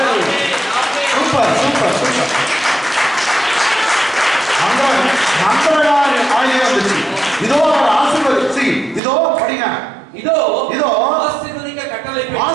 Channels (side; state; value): left; drops out; at 9.0 s